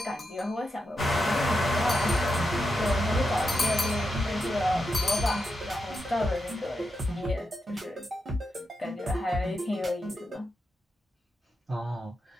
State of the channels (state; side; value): normal; both; correlation 0.86